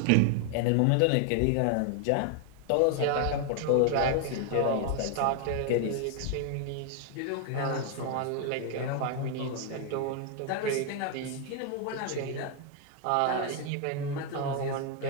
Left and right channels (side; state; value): both; different; correlation 0.00